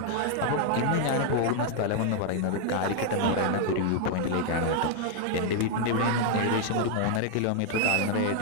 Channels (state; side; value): different; both; correlation 0.00